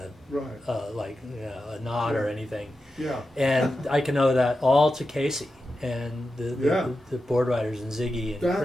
a nod or anything. Yeah. And I can owe that all to Casey and the board riders and Ziggy and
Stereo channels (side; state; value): both; normal; correlation 0.90